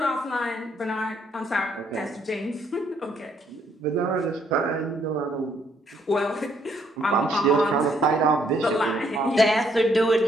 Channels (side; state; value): both; normal; correlation 0.69